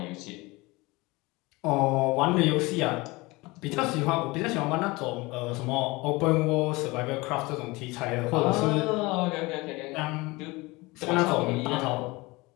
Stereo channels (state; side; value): quieter; right; 23.0 dB